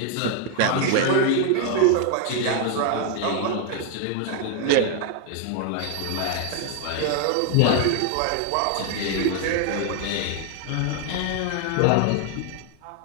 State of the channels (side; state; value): both; different; correlation 0.00